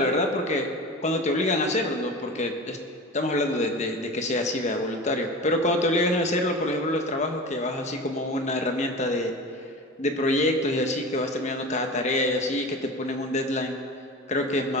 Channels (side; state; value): both; normal; correlation 0.32